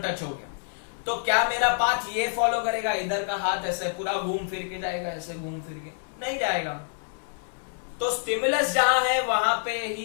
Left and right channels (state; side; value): silent; right; 60 dB below the other